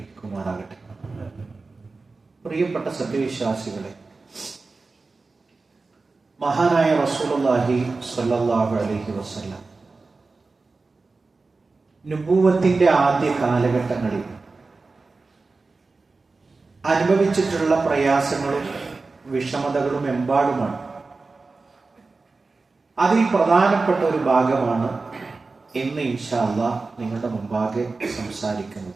പ്രിയപ്പെട്ട സത്യവിശ്വാസികളെ, മഹാനായ റസൂലുള്ളാഹി സ്വല്ലല്ലാഹു അലൈഹി വസല്ലം നുബുവത്തിന്റെ ആദ്യ കാലഘട്ടങ്ങളിൽ അനുഭവിച്ചിട്ടുള്ള പ്രയാസങ്ങളും വിഷമതകളും എമ്പാടുമാണ്. അതിൽ പ്രധാനപ്പെട്ട ഒരു ഭാഗമാണ് ഇന്ന് ഇൻഷാ അല്ലാഹ് നിങ്ങളുടെ മുമ്പാകെ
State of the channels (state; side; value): quieter; left; 3.8 dB